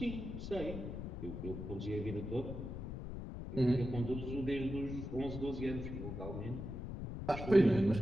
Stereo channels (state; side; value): noise; left; rumble, 6 dB below the sound